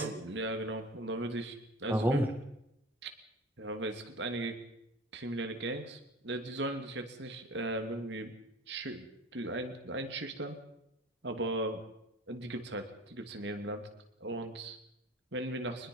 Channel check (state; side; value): normal; both; correlation 0.40